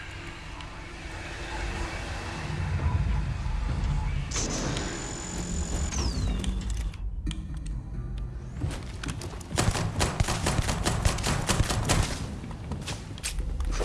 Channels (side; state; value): both; identical; correlation 1.00